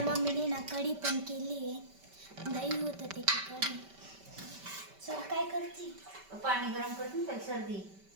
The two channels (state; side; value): late; left; 5.2 ms